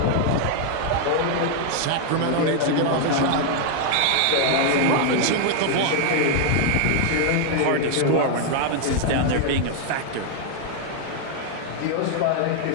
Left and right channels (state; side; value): different; both; correlation 0.00